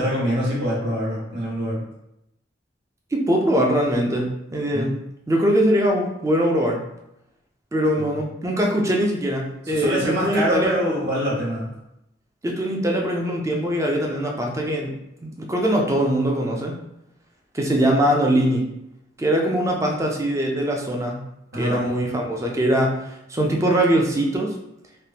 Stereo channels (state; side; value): normal; both; correlation 0.60